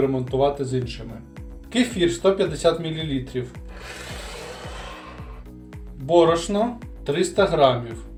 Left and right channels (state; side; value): identical; both; correlation 1.00